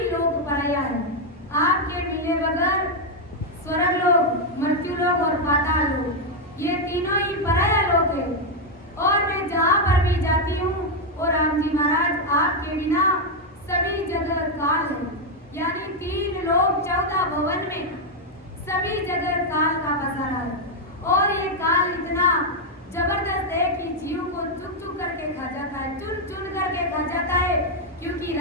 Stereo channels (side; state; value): both; normal; correlation 0.01